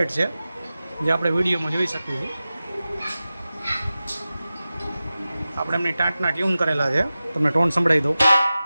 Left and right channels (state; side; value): inverted; both; correlation -0.95